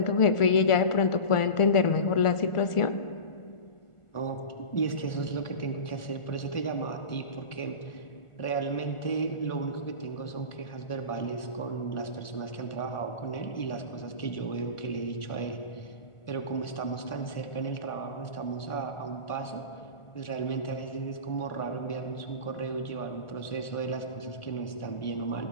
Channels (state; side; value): late; right; 1.4 ms